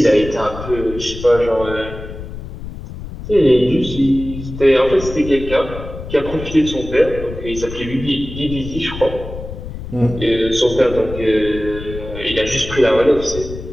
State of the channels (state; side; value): noise; left; rumble, 10 dB below the sound